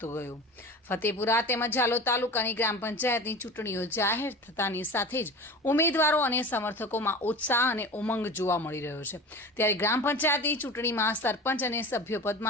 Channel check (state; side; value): normal; both; correlation 0.34